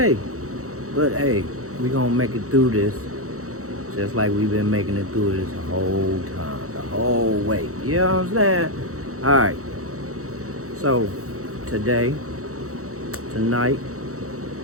But hey, we gonna make it through this. Just like we've been making it through this the whole time, the whole way. You know what I'm saying? Alright. So, tonight,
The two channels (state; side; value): late; left; 0.65 ms